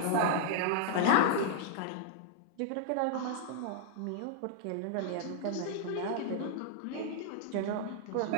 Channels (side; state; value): both; different; correlation -0.01